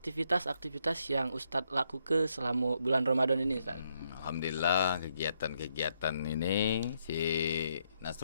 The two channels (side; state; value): both; inverted; correlation -0.77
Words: yang Ustadz lakukan selama bulan Ramadan ini, Ustadz? Alhamdulillah kegiatan-kegiatan ini si